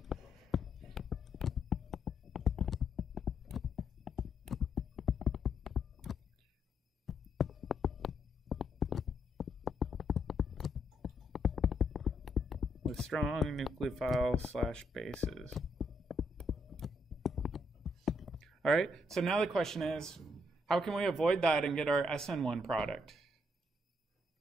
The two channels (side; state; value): both; normal; correlation 0.75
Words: with strong nucleophile / bases. All right, so now the question is, how can we avoid that and get our SN1 product?